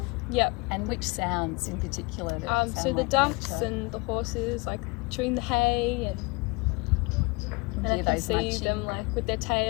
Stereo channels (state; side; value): quieter; right; 27.2 dB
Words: Yep. And which sounds in particular that sound so the like ducks nature? and the horses like chewing the hay and I can see them like with their